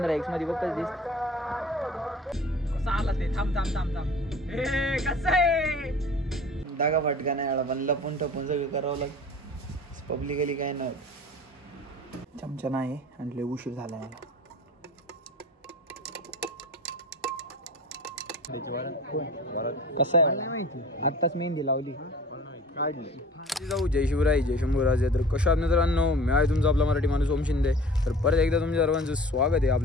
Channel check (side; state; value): both; normal; correlation 0.43